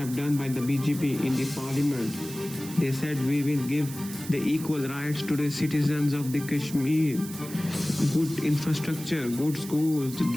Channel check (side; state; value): right; noise; hiss, 13 dB below the sound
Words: done by the BJP in the parliament. They said we will give the equal rights to the citizens of the Kashmir, good infrastructure, good schools,